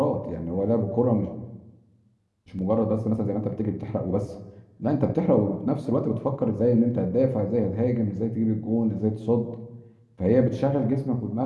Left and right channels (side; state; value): both; identical; correlation 1.00